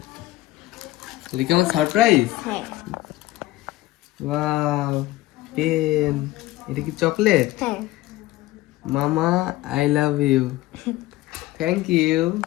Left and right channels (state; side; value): quieter; right; 17.4 dB